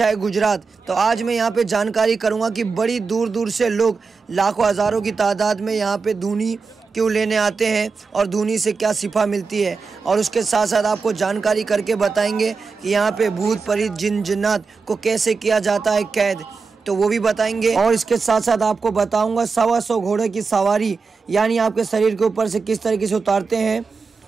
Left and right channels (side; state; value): left; quieter; 4.7 dB